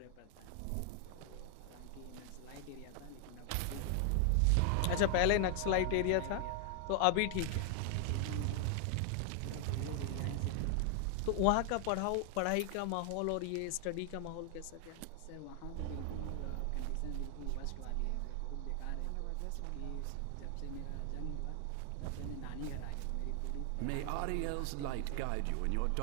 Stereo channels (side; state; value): both; different; correlation 0.00